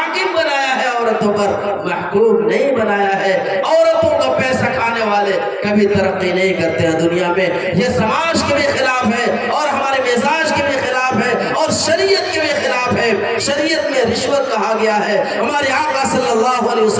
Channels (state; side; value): identical; both; correlation 1.00